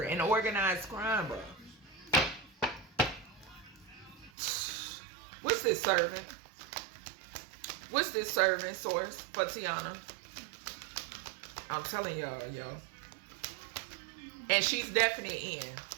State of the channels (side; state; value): left; drops out; at 4.3 s